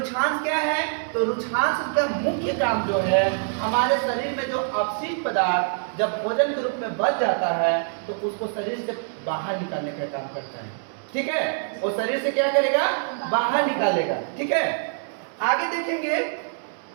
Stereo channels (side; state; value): left; silent; 62 dB below the other